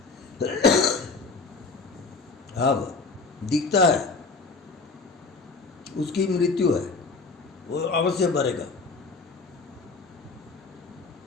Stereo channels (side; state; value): right; quieter; 4.2 dB